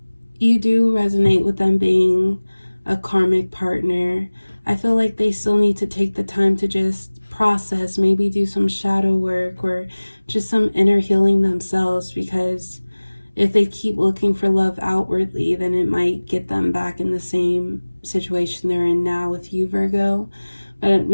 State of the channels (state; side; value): inverted; both; correlation -1.00